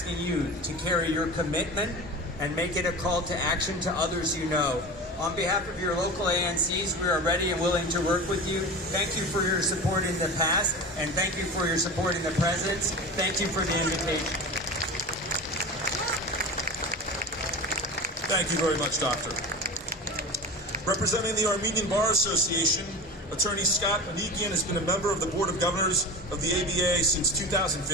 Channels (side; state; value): both; normal; correlation 0.30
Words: you to carry your commitment and make it a call to action to others you know. On behalf of your local ANCs, we are ready and willing to work with you. Thank you for your support in the past, and thank you for your support in the present. Thank you for the invitation. Thank you very much, Doctor. Representing the Armenian Bar Association, Attorney Scott Manikian has been a member of the Board of Governors of the ABA since